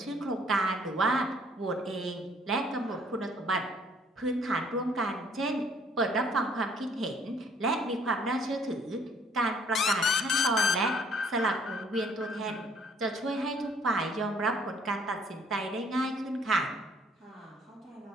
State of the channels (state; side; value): normal; both; correlation 0.61